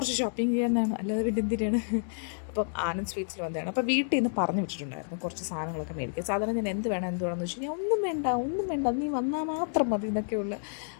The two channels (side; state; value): right; silent; digital silence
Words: ഷോപ്പിംഗ് ചെയ്യാനാണ്, അല്ലാതെ പിന്നെ എന്തിനാണ്. അപ്പം ആനന്ദ് സ്വീറ്റ്സിൽ വന്നതാണ്. അപ്പോൾ വീട്ടിൽ നിന്ന് പറഞ്ഞു വിട്ടിട്ടുണ്ടായിരുന്നു കുറച്ച് സാധനങ്ങളൊക്കെ മേടിക്കുക. സാധാരണ ഞാൻ എന്ത് വേണമെന്ന് വെച്ച് കഴിഞ്ഞാൽ ഒന്നും വേണ്ട നീ വന്നാൽ മാത്രം മതി എന്നൊക്കെയുള്ള